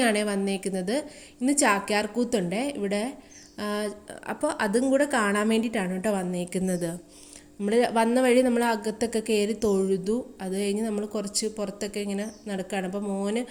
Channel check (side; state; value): both; identical; correlation 1.00